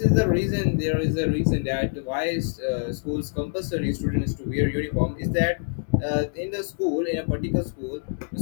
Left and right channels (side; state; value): right; silent; digital silence